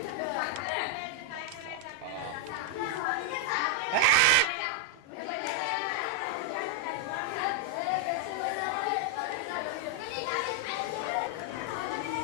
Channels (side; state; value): both; different; correlation 0.00